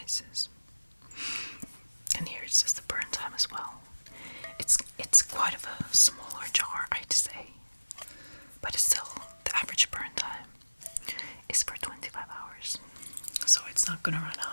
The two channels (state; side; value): inverted; both; correlation -1.00